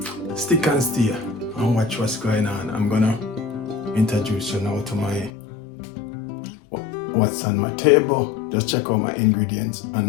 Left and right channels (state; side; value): drops out; right; at 5.3 s